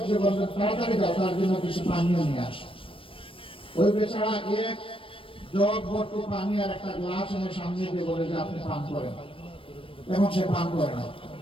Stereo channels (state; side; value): late; right; 0.26 ms